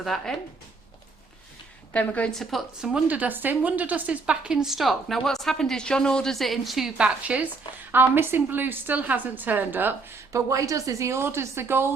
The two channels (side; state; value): left; quieter; 4.0 dB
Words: that in. Then we're going to put some WonderDust in. WonderDust is back in stock. Now what's happened is John orders it in 2 batches. Our missing blue still hasn't turned up, but what he does is he orders the